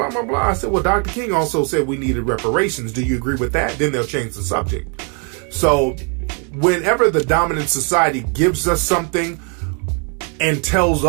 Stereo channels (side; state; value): left; quieter; 38.3 dB